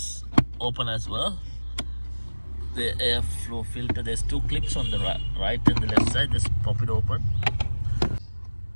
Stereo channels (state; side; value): inverted; both; correlation -1.00